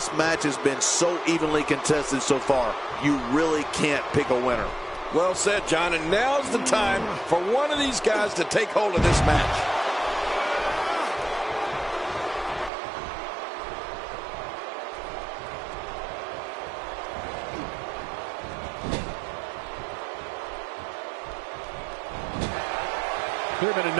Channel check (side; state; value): left; drops out; at 12.7 s